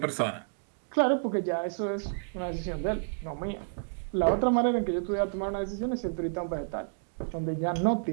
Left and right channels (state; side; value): silent; left; digital silence